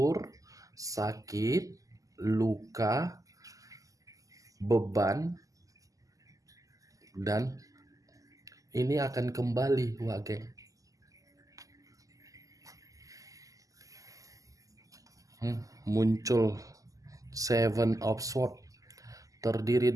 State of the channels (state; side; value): late; left; 0.17 ms